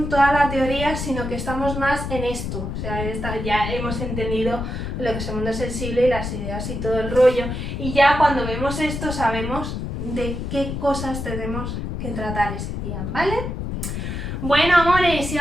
toda la teoría, sino que estamos más en esto, o sea, ya hemos entendido lo que es el mundo sensible y las ideas y todo el rollo, y ya cuando vemos esto sabemos de qué cosas tenemos que tratar ese día, ¿vale? Bueno, amores, y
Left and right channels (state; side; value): noise; left; rumble, 4 dB below the sound